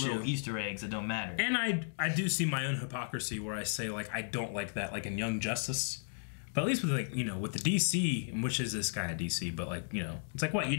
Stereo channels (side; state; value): right; silent; digital silence